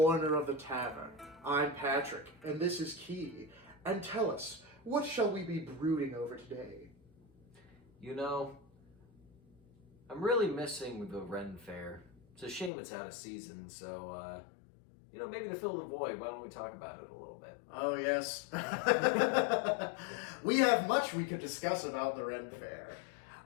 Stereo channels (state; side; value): drops out; right; at 12.7 s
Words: of the tavern. I'm Patrick, and this is Key. And tell us, what shall we be brooding over today? You know, I'm really missing the Ren Fair. It's a shame it's out of season, so, maybe to fill the void, why don't we talk about it a little bit? Oh, yes. We have much we could discuss about the Ren Fair.